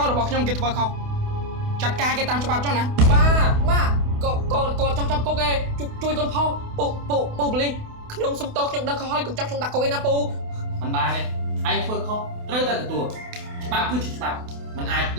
ូនរបស់ខ្ញុំគេធ្វើខុសចាត់ការគេតាមច្បាប់ចុះណា ម៉ាគាត់ចង់ចាប់គុកឯងជួយកូនផងពូប៉ូលីសខ្ញុំសុំទោសខ្ញុំដឹងខុសហើយកុំចាប់ខ្ញុំដាក់គុកឯណាពូ មិនបានទេឯងធ្វើខុសត្រូវតែទទួលច្បាប់គឺជាច្បាប់មិនអាច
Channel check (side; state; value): left; late; 28 ms